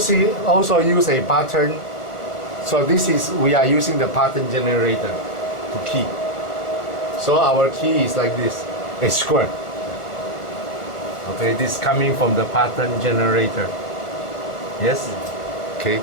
also use a pattern. So this is we are using the pattern generator to key. So our key is like this, a square. Okay, this coming from the pattern generator. Yes. Okay.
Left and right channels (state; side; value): late; right; 1.4 ms